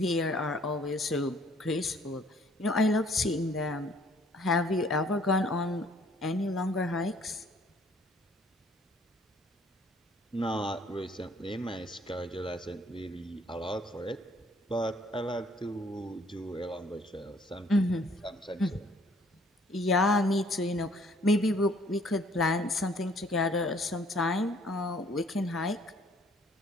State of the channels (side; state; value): both; normal; correlation 0.60